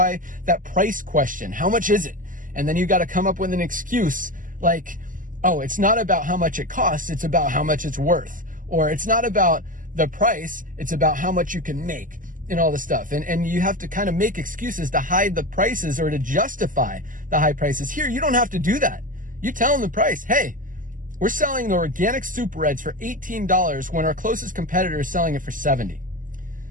that price question, how much is it? And then you got to come up with an excuse like, oh, it's not about how much it costs, it's about how much it's worth. Or it's not about the price, it's about how much you can make. And all this stuff. And you have to kind of make excuses to hide the prices or to justify the high prices. Here, you don't have to do that. You tell them the price. Hey, we're selling the organic Super Reds for $18 when our closest competitor is selling it for $70.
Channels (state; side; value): late; left; 0.39 ms